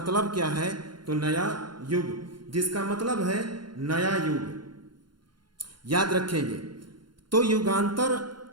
क्या है? तो नया युग, जिसका मतलब है नया युग। याद रखेंगे। तो युगांतर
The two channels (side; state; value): left; late; 0.72 ms